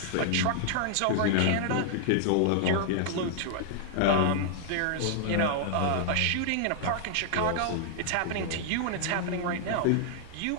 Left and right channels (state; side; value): different; both; correlation -0.01